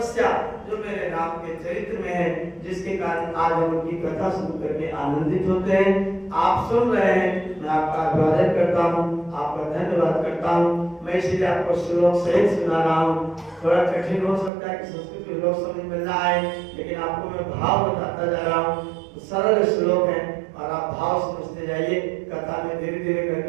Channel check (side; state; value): left; drops out; at 14.5 s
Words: जो मेरे राम के चरित्र में है, जिसके कारण आज हम उनकी कथा सुन करके आनंदित होते हैं। आप सुन रहे हैं, मैं आपका अभिवादन करता हूँ, आपका धन्यवाद करता हूँ। मैं इसलिए आपको श्लोक सहित सुना रहा हूँ। थोड़ा कठिन हो सकता है कि संस्कृत के लोग समझ में ना आए, लेकिन आपको मैं भाव बताता जा रहा हूँ। सरल श्लोक है और आप भाव समझते जाइए, कथा में धीरे धीरे